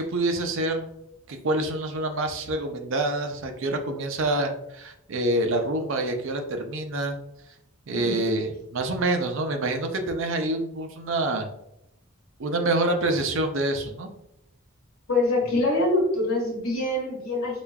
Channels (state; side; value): normal; both; correlation 0.20